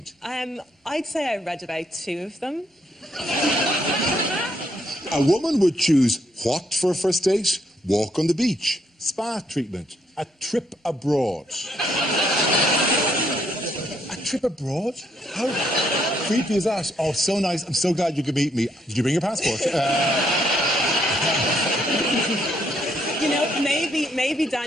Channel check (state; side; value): normal; both; correlation 0.72